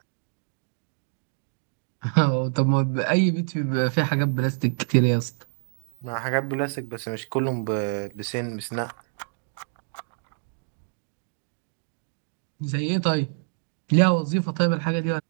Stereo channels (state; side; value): silent; left; digital silence